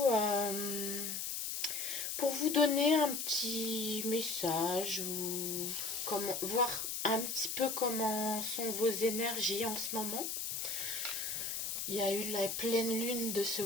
donner un petit message ou voir un petit peu comment sont vos énergies en ce moment. Il y a eu la pleine lune de ce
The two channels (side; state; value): left; noise; hiss, 3 dB below the sound